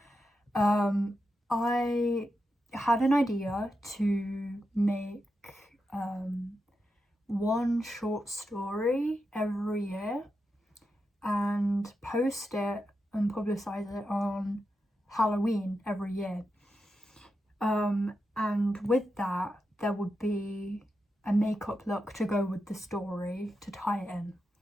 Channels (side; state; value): both; normal; correlation 0.87